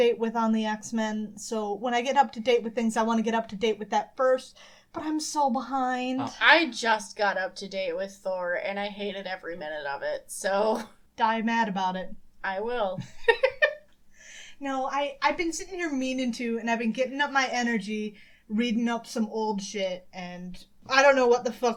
with on the X-Men. So when I get up to date with things, I want to get up to date with that first. But I'm so behind. Oh. I just got up to date with Thor, and I hated every minute of it, so... Die mad about it. I will. No, I've been sitting here meaning to, and I've been getting up my energy, reading up some old shit, and I don't know what the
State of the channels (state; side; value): identical; both; correlation 1.00